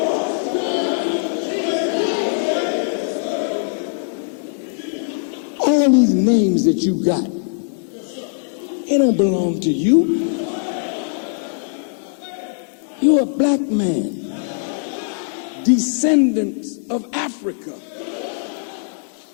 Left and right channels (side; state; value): right; silent; 65 dB below the other